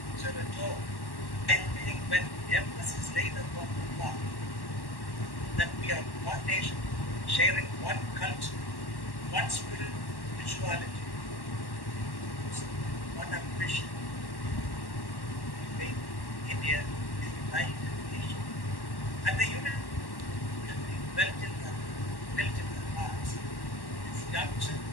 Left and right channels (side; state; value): right; late; 1.1 ms